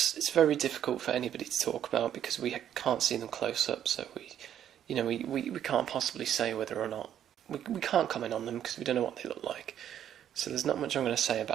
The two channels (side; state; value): left; quieter; 10.2 dB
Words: it's very difficult for anybody to talk about because we can't see them close up, so we can't possibly say whether or not... We can't comment on them because we don't know what they look like. So there's not much I'm going to say